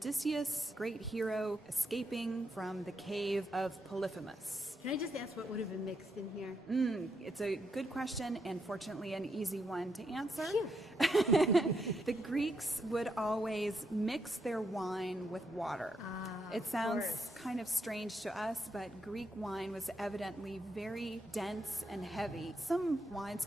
great hero, escaping from the cave of Polyphemus. Can I just ask what would have been mixed in here? It's a good question, and fortunately an easy one to answer. The Greeks would always mix their wine with water. It sounds kind of strange to us, but Greek wine was evidently very dense and heavy. Some wines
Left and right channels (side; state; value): both; normal; correlation 0.80